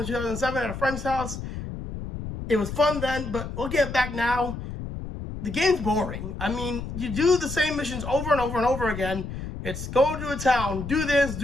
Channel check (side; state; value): left; noise; rumble, 8 dB below the sound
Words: 2007 at a friend's house. It was fun then, but looking at it back now, the game's boring. I mean, you do the same missions over and over and over again. It's go to a town, do this,